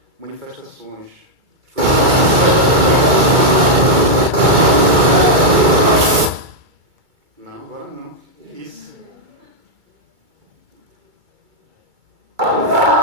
manifestações. Não, agora não. Isso.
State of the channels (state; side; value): late; left; 2.3 ms